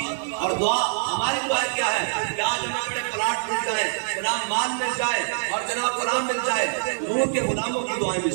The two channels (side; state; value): left; silent; digital silence